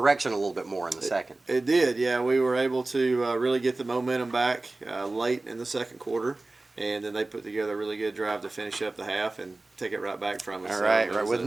a little bit more in the second. It did, yeah. We were able to really get the momentum back late in the second quarter. And then they put together a really good drive to finish up the half and take it right back from us. All right. With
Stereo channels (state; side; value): quieter; left; 3.1 dB